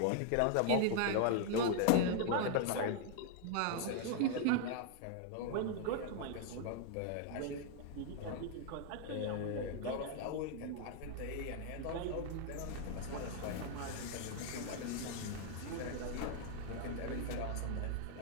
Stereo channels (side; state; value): both; different; correlation 0.00